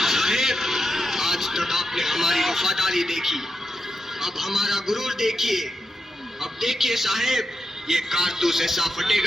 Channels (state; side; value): normal; both; correlation 0.86